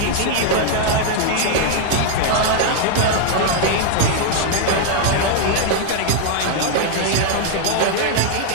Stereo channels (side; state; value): both; different; correlation 0.01